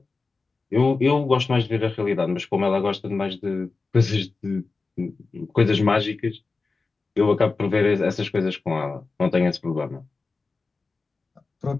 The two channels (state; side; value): quieter; right; 4.0 dB